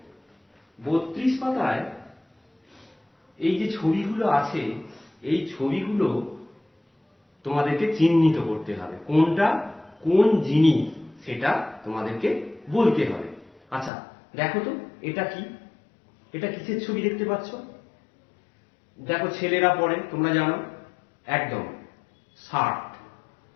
32 পাতায় এই যে ছবিগুলো আছে, এই ছবিগুলো তোমাদেরকে চিহ্নিত করতে হবে, কোনটা কোন জিনিস সেটা তোমাদেরকে বলতে হবে। আচ্ছা, দেখো তো এটা কি? এটা কিসের ছবি দেখতে পাচ্ছ? দেখো, ছেলেরা পরে, তোমরা জানো একদম, শার্ট।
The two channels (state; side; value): drops out; right; at 13.9 s